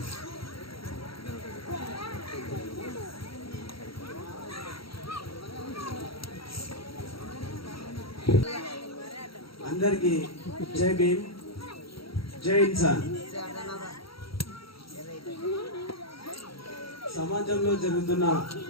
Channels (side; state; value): right; late; 0.75 ms